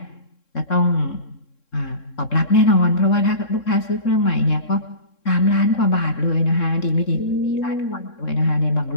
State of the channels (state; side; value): late; right; 3.7 ms